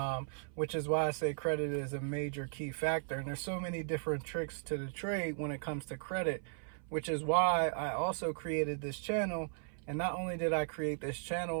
Which is why I say credit is a major key factor. And there's so many different tricks to the trade when it comes to credit, which is why I also created this channel. And not only did I create this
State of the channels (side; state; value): left; silent; 53 dB below the other